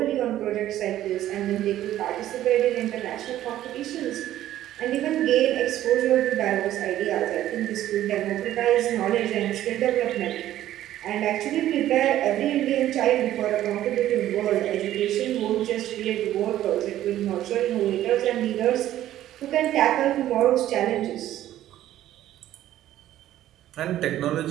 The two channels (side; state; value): left; quieter; 13.1 dB